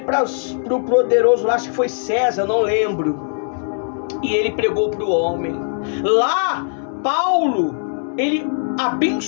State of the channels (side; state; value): right; silent; digital silence